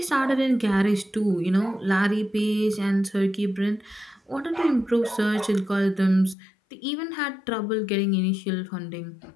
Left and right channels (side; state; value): right; drops out; at 6.4 s